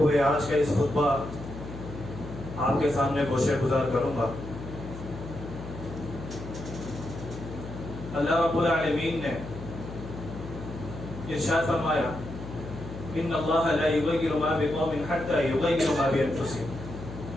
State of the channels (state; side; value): noise; left; hum, 11 dB below the sound